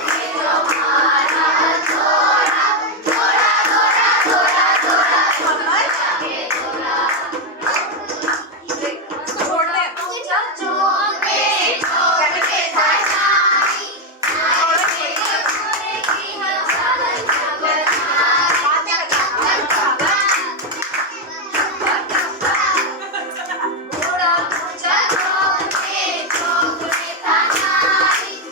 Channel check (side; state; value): both; normal; correlation 0.05